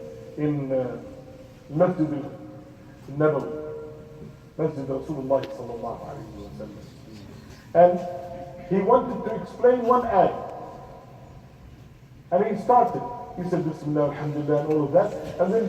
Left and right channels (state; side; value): identical; both; correlation 1.00